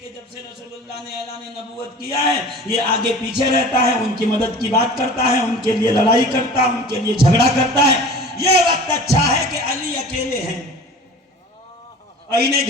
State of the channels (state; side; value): normal; both; correlation 0.41